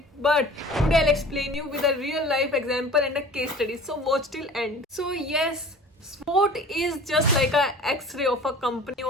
but today I will explain you with a real life example and a case study. So watch till end. So yes, SWOT is just like a X-ray of a company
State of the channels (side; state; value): both; normal; correlation 0.43